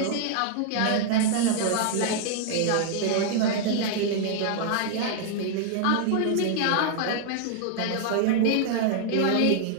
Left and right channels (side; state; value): both; different; correlation 0.00